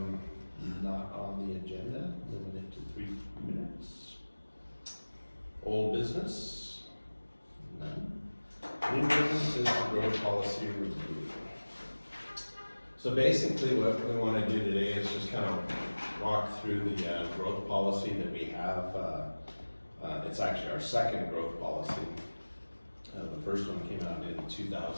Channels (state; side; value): inverted; both; correlation -1.00